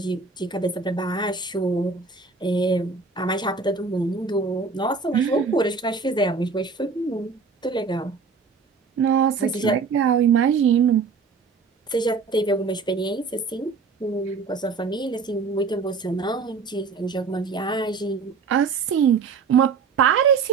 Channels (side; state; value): left; quieter; 4.9 dB